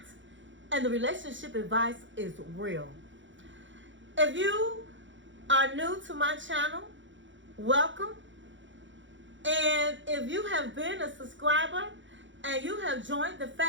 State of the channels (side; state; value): left; late; 0.55 ms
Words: and the relationship advice is real. If you are new to my channel, welcome. And if you have been a subscriber and you have joined the